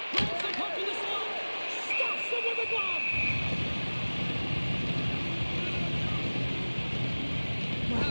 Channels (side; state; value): both; inverted; correlation -1.00